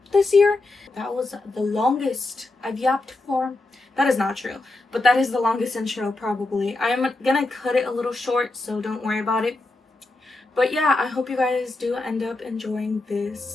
this year. That was the longest I've yapped for. That is not true, but that is the longest intro probably. I'm gonna cut it a little short, so don't worry about it. But yeah, I hope you guys do end up enjoying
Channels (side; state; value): right; quieter; 3.0 dB